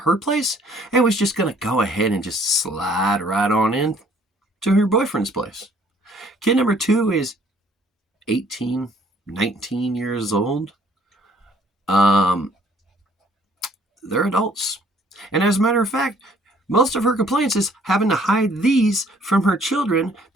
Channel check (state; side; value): normal; both; correlation 0.60